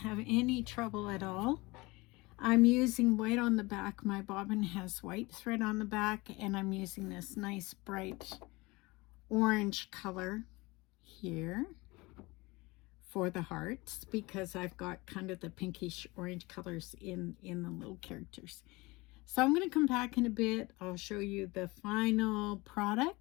any trouble at all. I'm using white on the back. My bobbin has white thread on the back, and I'm using this nice bright orange color here for the hearts, because I've got kind of the pinkish orange colors in the little characters. So I'm going to come back in a bit. I'll show you the final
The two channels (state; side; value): quieter; right; 23.2 dB